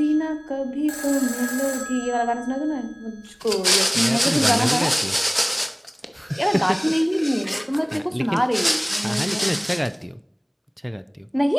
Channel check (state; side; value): identical; both; correlation 1.00